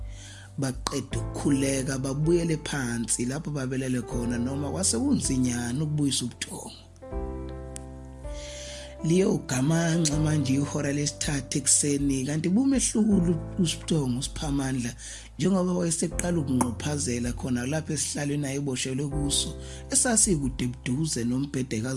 Baqeda ukukhuleka babuyele phansi lapho babelele khona noma kwase kunzinyana ukubuyisa ubuthongo. Liyo gamanxa manje ihora lesithathu ekseni kanti bumehlukulu uSiphthongo uSiphamandla njengoba wayeseqala ukunqophazela khona lapha esihlalweni ayeboshelwe kuso esasikude buduze nombhede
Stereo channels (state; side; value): identical; both; correlation 1.00